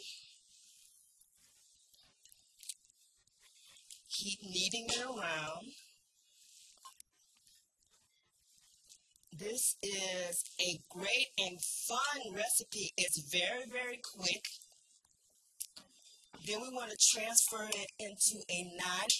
Keep kneading it around. This is a great and fun recipe. It's very, very quick. Then we want to transfer it into a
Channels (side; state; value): both; identical; correlation 1.00